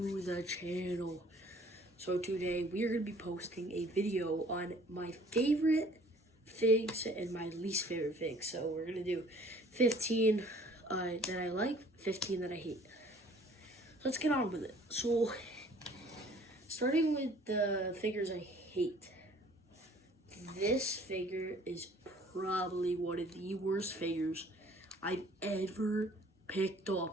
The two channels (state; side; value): normal; both; correlation 0.54